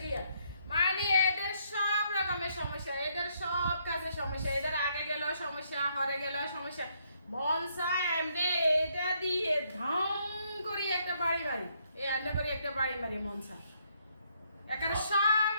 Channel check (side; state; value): both; inverted; correlation -0.72